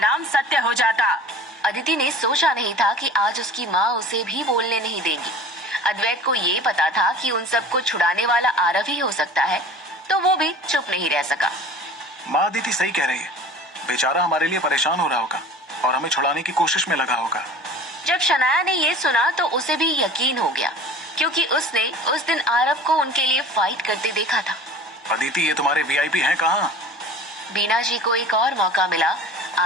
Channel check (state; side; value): normal; both; correlation 0.41